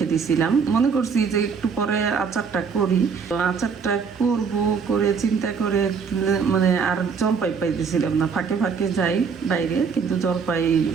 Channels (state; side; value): quieter; left; 5.9 dB